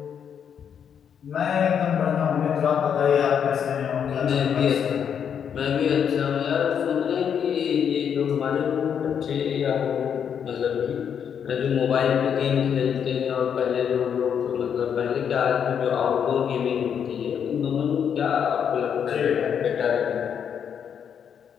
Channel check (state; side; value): quieter; right; 7.9 dB